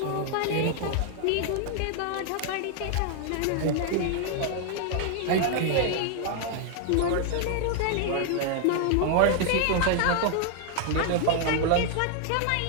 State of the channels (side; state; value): both; different; correlation 0.00